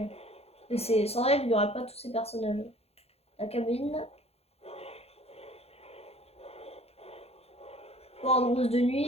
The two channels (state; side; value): late; right; 0.29 ms